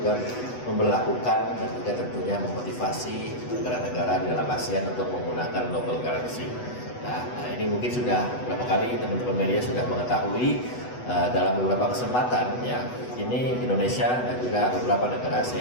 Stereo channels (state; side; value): late; right; 8.1 ms